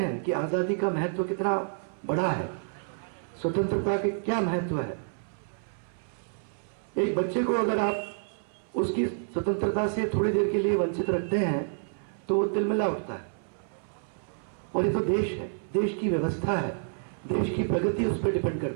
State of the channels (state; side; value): silent; left; 57 dB below the other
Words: कि आज़ादी का महत्व कितना बड़ा है, स्वतंत्रता के क्या महत्व है। एक बच्चे को अगर आप उसकी स्वतंत्रता से थोड़ी देर के लिए वंचित रखते हैं तो वो तिलमिला उठता है। और ये तो देश है, देश की व्यवस्था है, देश की प्रगति उस पर डिपेंड